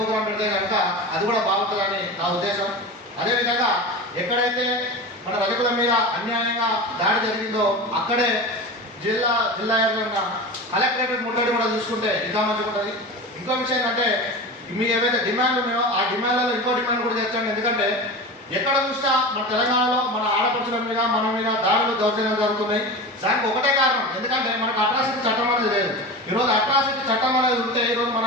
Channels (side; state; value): both; normal; correlation 0.29